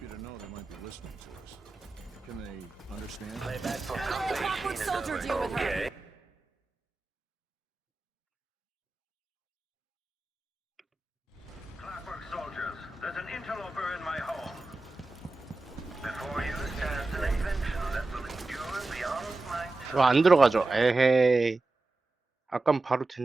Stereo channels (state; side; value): quieter; left; 3.2 dB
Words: to know they might be listening to us. Can they understand? Playback for Let the Clockwork Soldier deal with her. Okay. Clockwork soldiers, there's an interloper in my home. Before you stands an invention that will endure beyond my time. 왜 안 들어가죠? 에헤이. 아깐 바로